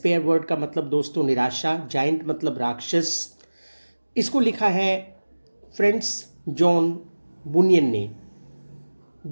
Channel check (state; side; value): inverted; both; correlation -1.00